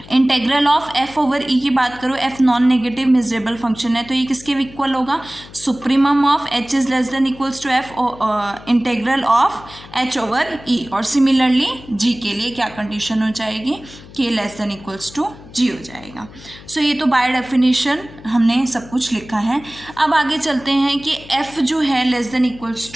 integral of f over e की बात करूँ, f non negative measurable function है, तो ये किसके इक्वल होगा, supremum of h is less than equals to f integral of h over e, और सिमिलरली g के लिए क्या कंडीशन हो जाएगी, k less than equals to g हो जाएगा। सो ये तो बाय डेफिनेशन हमने सब कुछ लिखा है। अब आगे चलते हैं कि f जो है less than equals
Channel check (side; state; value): left; noise; hum, 19 dB below the sound